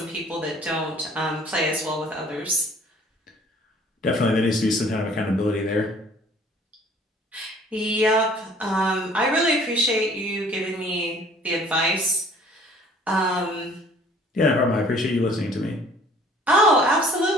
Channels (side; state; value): both; normal; correlation 0.54